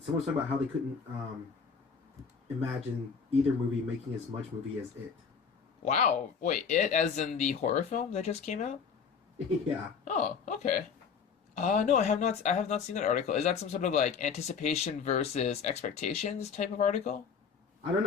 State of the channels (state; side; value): quieter; right; 6.2 dB